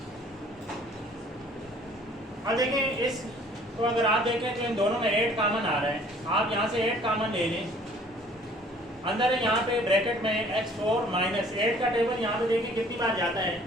अब देखें इस तो अगर आप देखें तो इन दोनों में 8 कॉमन आ रहा है। आप यहाँ से 8 कॉमन ले लें। अंदर है यहाँ पे ब्रैकेट में x4 माइनस 8 का टेबल यहाँ पे देखिए कितनी बार जाता है,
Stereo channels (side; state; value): both; normal; correlation 0.55